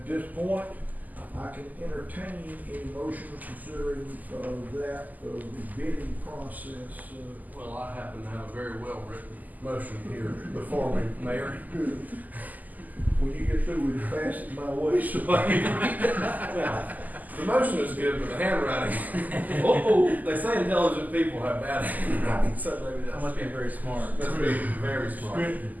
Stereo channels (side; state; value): left; late; 0.081 ms